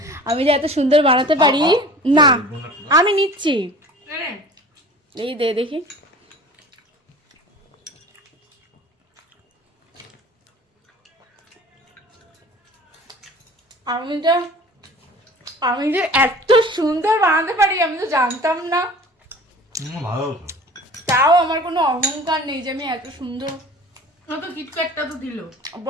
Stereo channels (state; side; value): normal; both; correlation 0.43